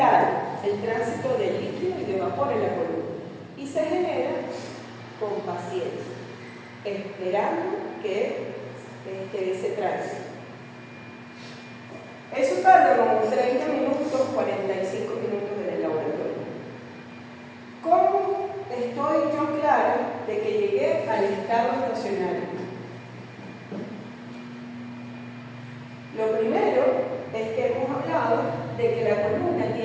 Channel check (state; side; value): identical; both; correlation 1.00